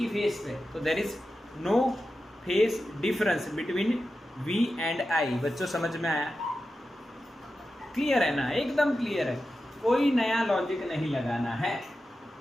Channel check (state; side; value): normal; both; correlation 0.91